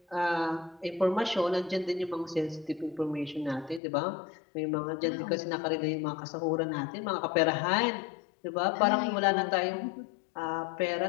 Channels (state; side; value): drops out; right; at 3.8 s